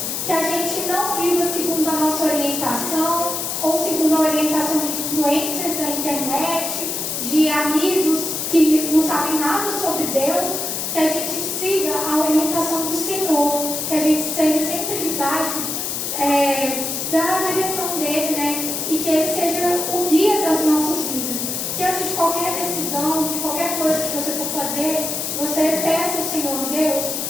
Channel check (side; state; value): left; noise; hiss, 2 dB below the sound